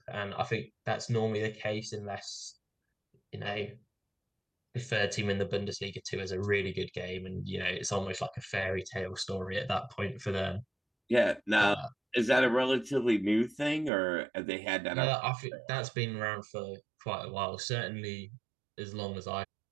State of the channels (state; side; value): drops out; left; at 13.9 s